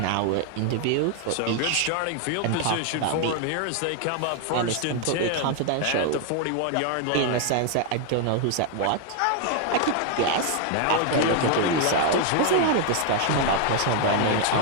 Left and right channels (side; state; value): both; different; correlation 0.00